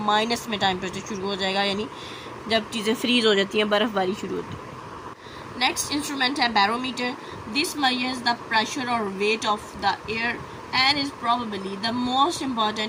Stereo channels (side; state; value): both; identical; correlation 1.00